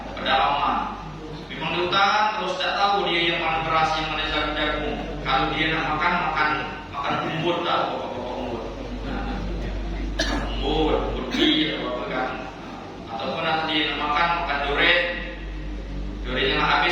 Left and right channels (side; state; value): both; identical; correlation 1.00